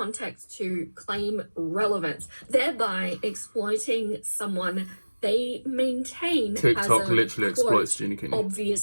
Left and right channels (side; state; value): both; inverted; correlation -1.00